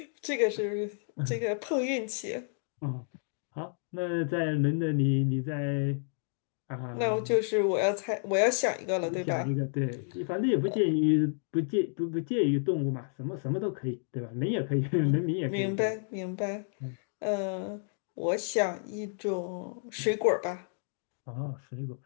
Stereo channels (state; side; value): silent; right; digital silence